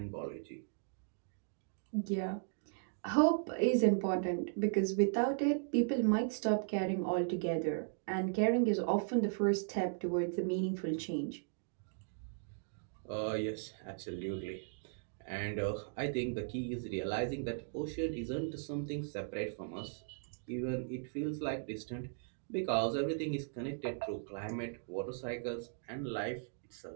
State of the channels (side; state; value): left; silent; digital silence